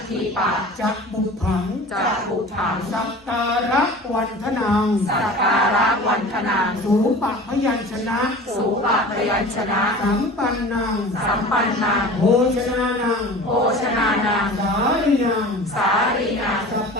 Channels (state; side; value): normal; both; correlation 0.39